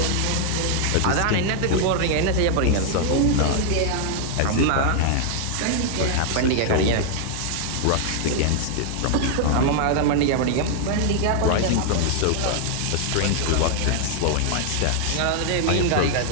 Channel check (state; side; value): different; both; correlation 0.00